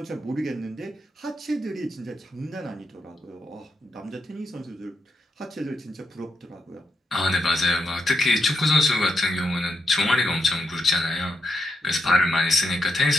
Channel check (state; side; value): normal; both; correlation 0.82